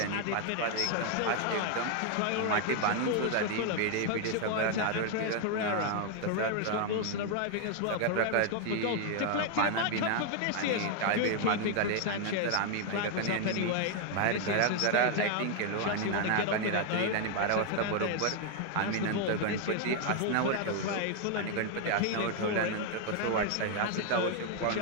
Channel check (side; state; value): both; different; correlation 0.00